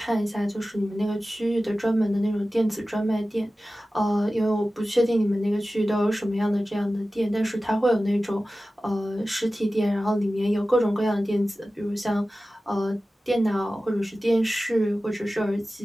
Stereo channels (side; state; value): both; normal; correlation 0.95